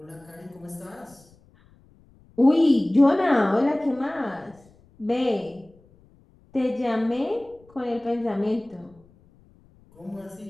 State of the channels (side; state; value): left; noise; rumble, 29 dB below the sound